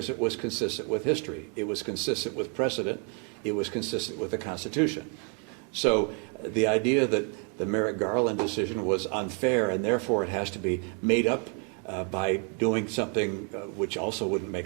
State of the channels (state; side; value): quieter; left; 39.0 dB